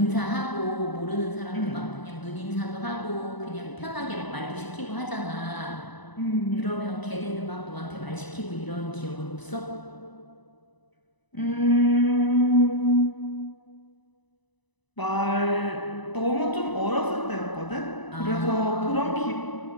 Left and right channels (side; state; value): right; late; 1.0 ms